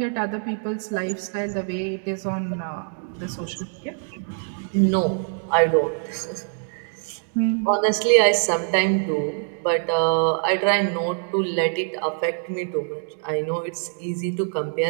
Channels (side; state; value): left; silent; 57 dB below the other